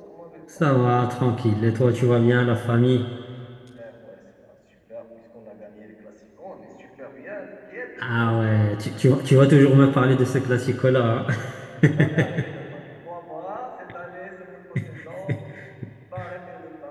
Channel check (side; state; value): both; identical; correlation 1.00